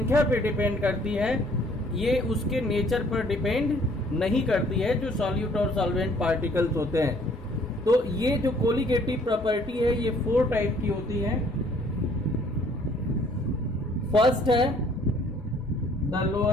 पे डिपेंड करती है, ये उसके नेचर पर डिपेंड नहीं करती है जो सॉल्यूट और सॉल्वेंट पार्टिकल्स होते हैं। तो ये जो कोलिगेटिव प्रॉपर्टी है ये 4 टाइप की होती है। फर्स्ट है the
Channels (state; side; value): normal; both; correlation 0.60